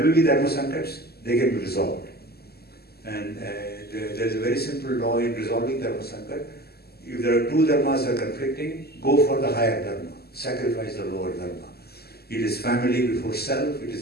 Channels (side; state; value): right; late; 0.46 ms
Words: will be Dharma Sankats, they can be resolved. And there is a very simple law in resolving Dharma Sankat. If there are two dharmas are conflicting, go for the higher dharma, sacrifice the lower dharma. It is family before self, it is